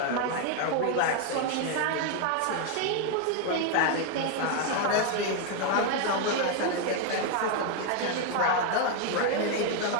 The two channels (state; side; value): different; both; correlation 0.01